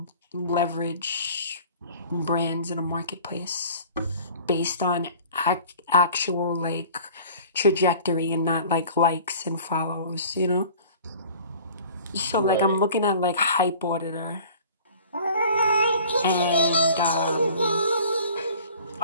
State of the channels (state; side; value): inverted; both; correlation -0.46